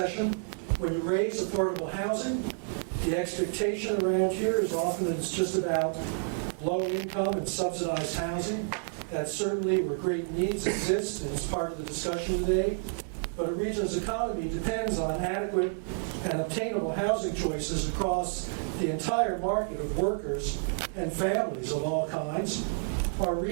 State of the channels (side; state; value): left; silent; 56 dB below the other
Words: When you raise affordable housing, the expectation around here is often that it's just about low income and subsidized housing. That's certainly where great needs exist, and it's part of the discussion today. But a region's economy depends on adequate and obtainable housing choices across the entire market of workers and families of all kinds. Our